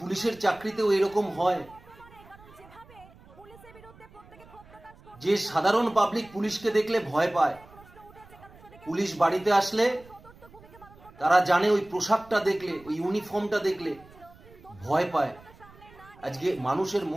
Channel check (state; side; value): noise; right; rumble, 23 dB below the sound